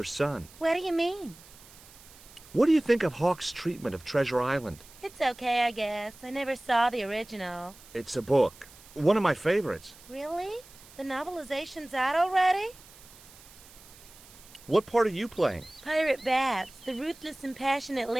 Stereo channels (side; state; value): right; noise; hiss, 22 dB below the sound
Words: son? What do you mean? What do you think of Hawk's treatment of Treasure Island? It's okay, I guess. I never saw the original. It's a book. One of my favorites. Really? The novelization's out already? What part are you playing? Pirate Babs, the ruthless and passionate